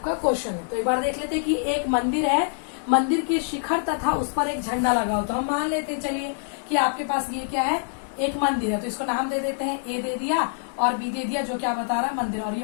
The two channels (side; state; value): right; silent; 62 dB below the other